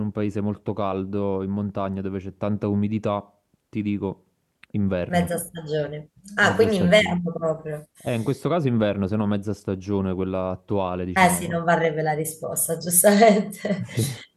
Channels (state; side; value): identical; both; correlation 1.00